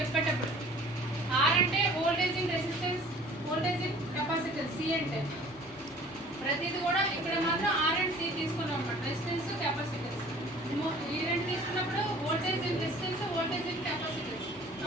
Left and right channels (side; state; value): both; normal; correlation 0.49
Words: చెప్పేటప్పుడు. R అంటే voltage in resistance, voltage in capacitance. C అంటే ప్రతిది కూడా ఇక్కడ మాత్రం R అండ్ C తీసుకున్నాం అన్నమాట. Resistance, capacitance. ఈ రెండు తీసుకున్నప్పుడు voltage in resistance, voltage in capacitance.